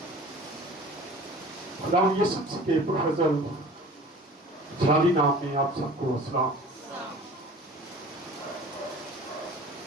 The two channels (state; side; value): normal; both; correlation 0.44